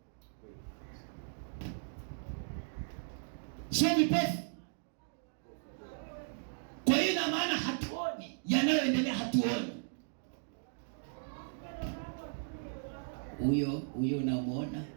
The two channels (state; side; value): silent; left; digital silence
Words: sio vipofu. Kwa hiyo na maana hatuoni yanayoendelea, hatuoni. Huyo unamuona